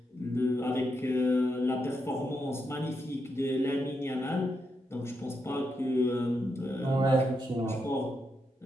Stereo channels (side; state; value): both; normal; correlation 0.83